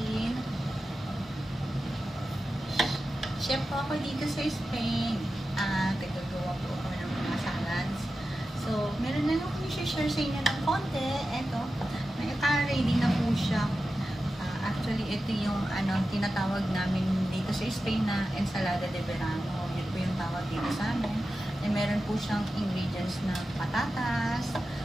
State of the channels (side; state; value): both; normal; correlation 0.92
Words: Chef po ako dito sa Spain. Nagagawa po ako ng mga salads. So, meron na lang kung share sa inyo ng konti. Ito, naka-ready na po siya. Actually, ito yung tinatawag namin dito sa Spain na ensalada de verano. Yun po yung tawag dito sa amin. And meron po siyang ingredients na patatas.